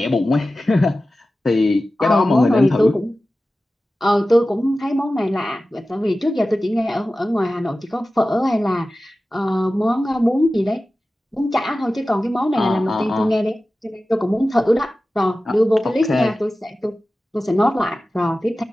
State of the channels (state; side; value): normal; both; correlation 0.95